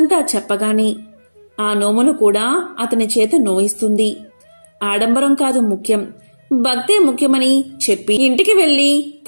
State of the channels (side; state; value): both; inverted; correlation -1.00